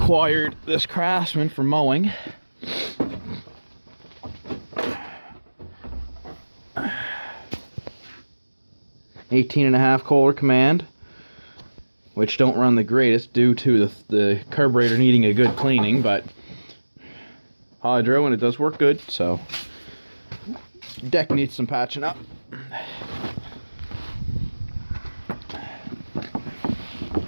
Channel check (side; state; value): both; inverted; correlation -1.00